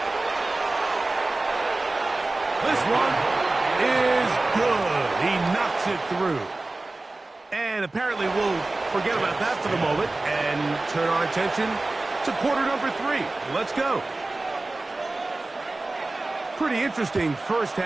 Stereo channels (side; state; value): left; quieter; 3.1 dB